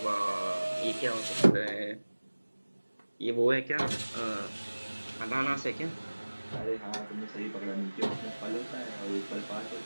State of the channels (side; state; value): both; inverted; correlation -1.00